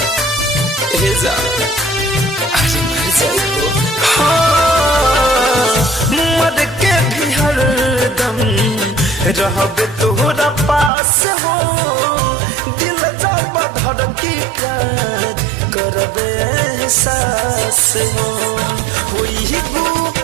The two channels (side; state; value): left; drops out; at 10.9 s